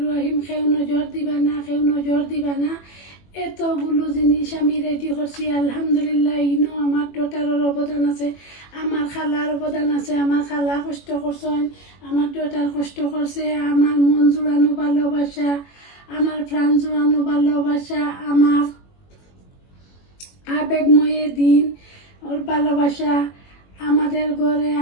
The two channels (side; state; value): right; late; 21 ms